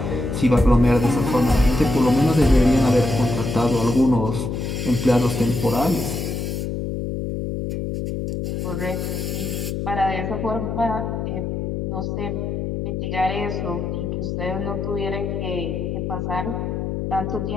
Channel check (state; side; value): noise; left; hum, 3 dB below the sound